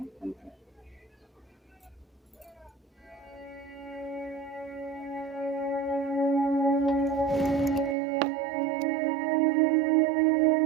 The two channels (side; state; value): left; drops out; at 8.0 s